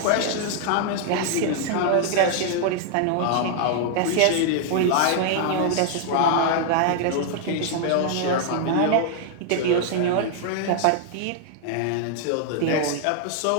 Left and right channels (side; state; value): both; different; correlation 0.00